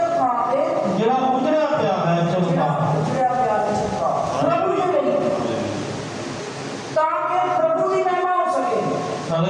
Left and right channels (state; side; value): identical; both; correlation 1.00